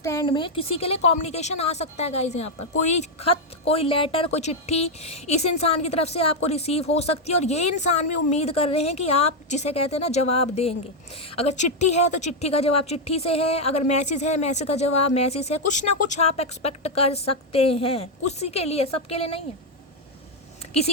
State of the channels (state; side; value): normal; both; correlation 0.02